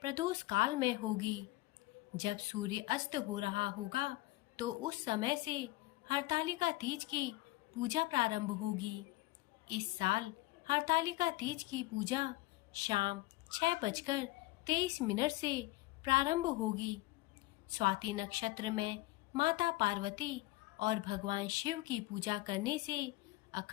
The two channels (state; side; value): quieter; right; 19.1 dB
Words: प्रदोष काल में होगी। जब सूर्य अस्त हो रहा होगा तो उस समय से हरतालिका तीज की पूजा प्रारंभ होगी। इस साल हरतालिका तीज की पूजा शाम 6:23 से प्रारंभ होगी। स्वाति नक्षत्र में माता पार्वती और भगवान शिव की पूजा करने से